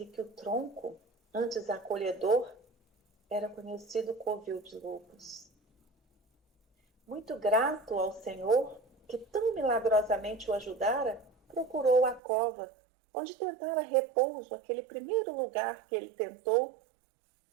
que o tronco, antes acolhedor, era conhecido covil de lobos. Muito grato ao Senhor, que tão milagrosamente o ajudara, procurou a cova, onde tentara repouso, aquele primeiro lugar que ele tentou,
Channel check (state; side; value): drops out; left; at 12.2 s